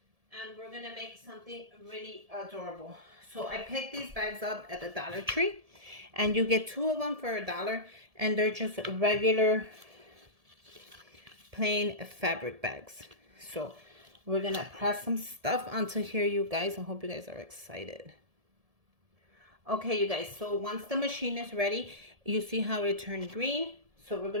And we're going to make something really adorable. So I picked these bags up at the Dollar Tree. And you get 2 of them for $1. And they're just regular plain fabric bags. So we're going to press some stuff onto here, you guys. I hope you guys are excited. Okay, you guys. So once the machine is ready, you see how it turned green. So we're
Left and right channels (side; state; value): left; late; 1.7 ms